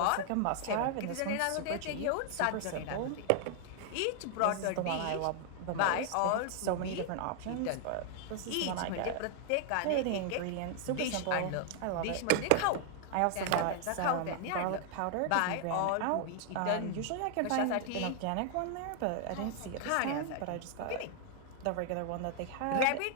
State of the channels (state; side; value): different; both; correlation 0.00